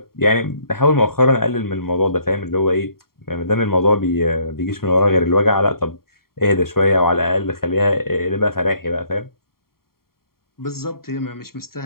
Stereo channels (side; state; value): right; late; 0.93 ms